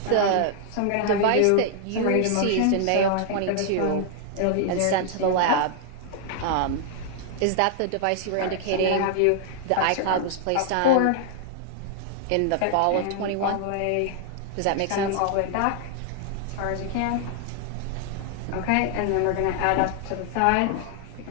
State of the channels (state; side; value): different; both; correlation 0.00